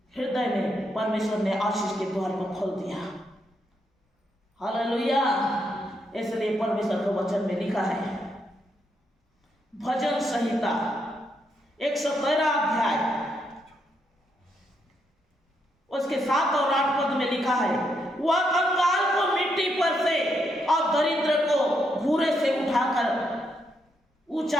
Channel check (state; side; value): normal; both; correlation 0.79